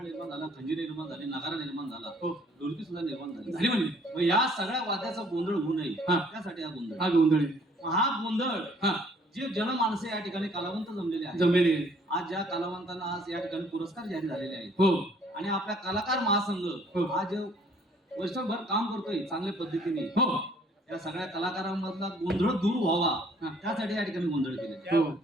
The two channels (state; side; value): normal; both; correlation 0.60